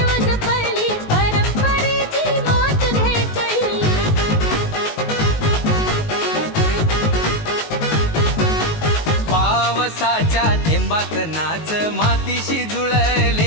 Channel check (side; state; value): right; late; 19 ms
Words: जपली, परंपरेची मात घेतली. पावसाच्या थेंबात नाच, मातीशी